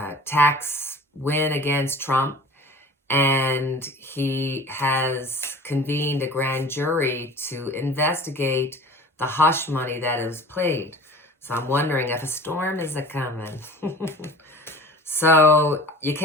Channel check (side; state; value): both; normal; correlation 0.42